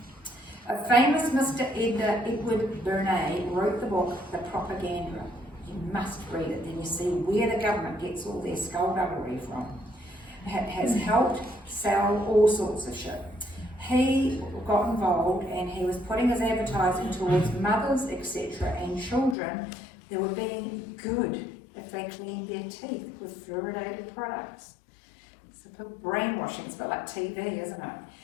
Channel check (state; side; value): drops out; right; at 19.4 s